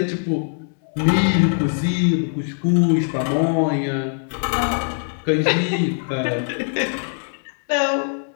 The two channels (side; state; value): right; silent; digital silence